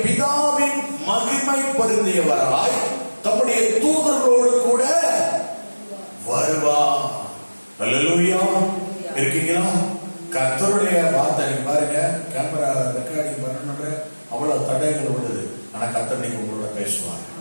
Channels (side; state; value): both; inverted; correlation -1.00